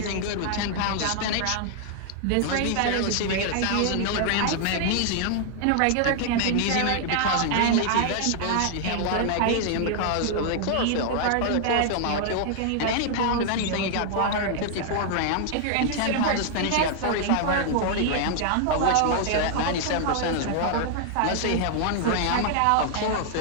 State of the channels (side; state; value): both; different; correlation 0.00